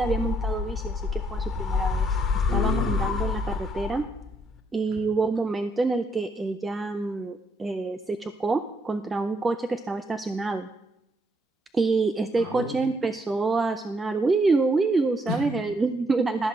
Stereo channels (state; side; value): normal; both; correlation 0.74